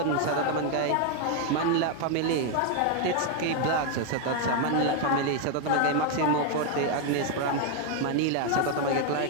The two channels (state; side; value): different; both; correlation 0.01